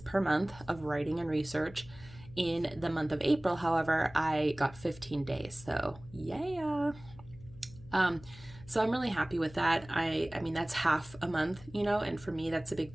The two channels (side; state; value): left; noise; hum, 19 dB below the sound